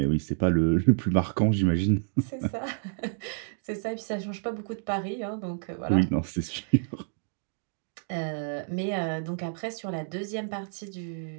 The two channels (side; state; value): left; silent; digital silence